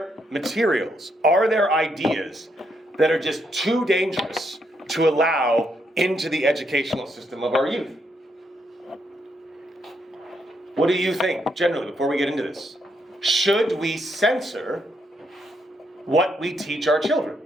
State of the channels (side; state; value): both; normal; correlation 0.77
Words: materials, are there ideas that are just too dangerous to allow into the educational system of our youth? What do you think, generally, before we get into this? Should we censor what we teach our children,